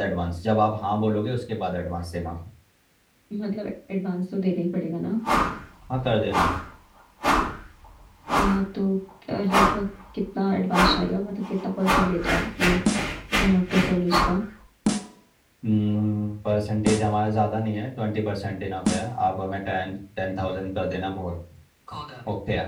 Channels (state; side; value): identical; both; correlation 1.00